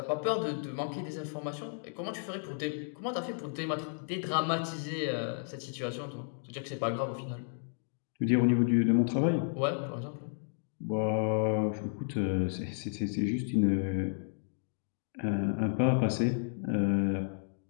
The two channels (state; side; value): silent; right; digital silence